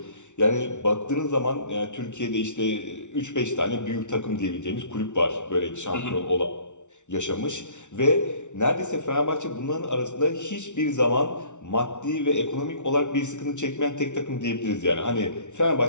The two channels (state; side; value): late; right; 0.84 ms